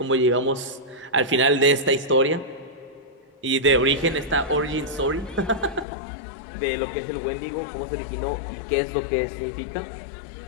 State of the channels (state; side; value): drops out; right; at 5.9 s